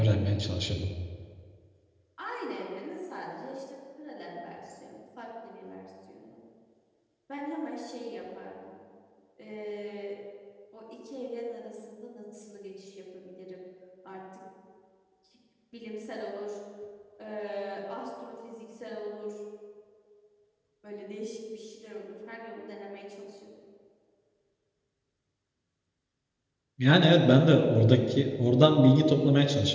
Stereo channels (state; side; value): identical; both; correlation 1.00